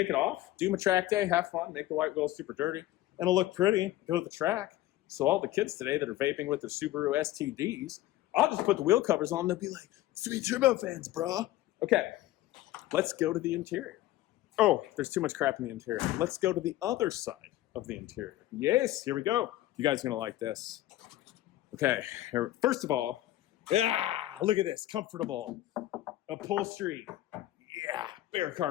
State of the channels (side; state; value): right; quieter; 15.4 dB